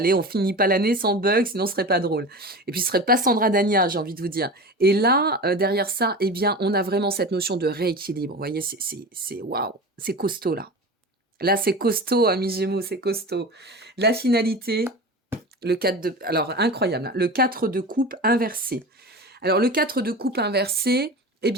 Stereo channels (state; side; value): normal; both; correlation 0.31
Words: on finit pas l'année sans bug, sinon ce serait pas drôle. Et puis ce serait pas Sandra Dania, j'ai envie de vous dire. Et là, derrière ça, eh bien, on a vraiment cette notion de rééquilibre. Vous voyez, c'est waouh, c'est costaud là. Là, c'est costaud, amis Gémeaux, c'est costaud. La finalité, le 4 de... Alors, incroyable, hein, le 4 de coupe inversé. Alors, le 4 de coupe inversé, eh